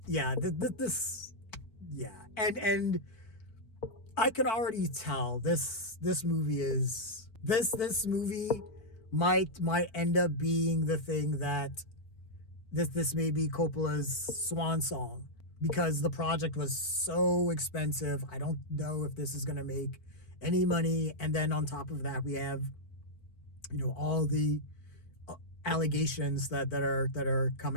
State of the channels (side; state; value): right; late; 4.5 ms